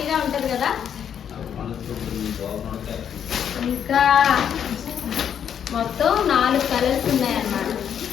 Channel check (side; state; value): right; quieter; 8.6 dB